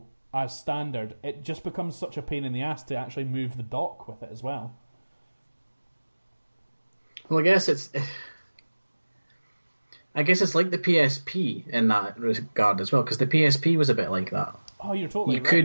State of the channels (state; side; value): inverted; both; correlation -1.00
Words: as standard, it just becomes such a pain in the ass to actually move the dock with it as well. Well, I guess it's like the PSP in that regard as well, because the PSP was a bit like that. Oh, you're totally